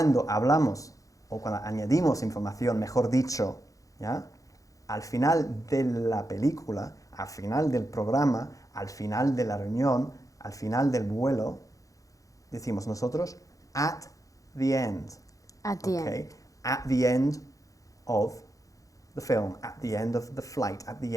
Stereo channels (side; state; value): right; late; 0.16 ms